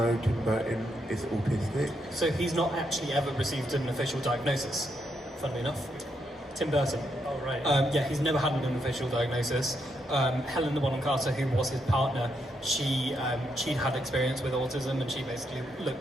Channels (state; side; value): normal; both; correlation 0.79